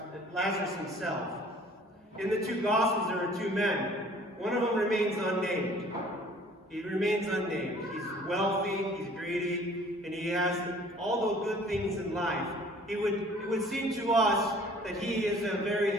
himself. In the two Gospels, there are two men. One of them remains unnamed. He remains unnamed. He's wealthy, he's greedy, and he has all the good things in life. It would seem to us that he is a very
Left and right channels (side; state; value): both; normal; correlation 0.52